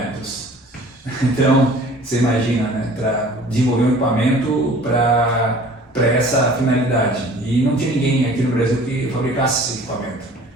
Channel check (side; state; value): both; normal; correlation 0.48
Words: Então, você imagina, né, para desenvolver um equipamento para essa finalidade. E não tinha ninguém aqui no Brasil que fabricasse esse equipamento.